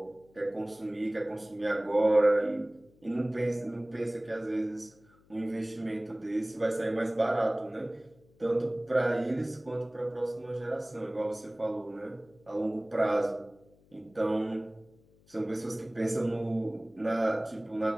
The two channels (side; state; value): left; noise; hum, 30 dB below the sound